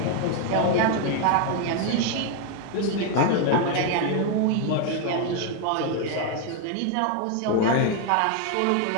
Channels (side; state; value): both; different; correlation 0.01